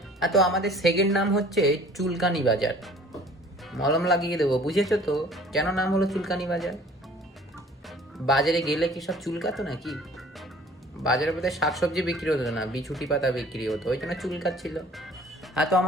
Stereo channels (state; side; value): normal; both; correlation 0.51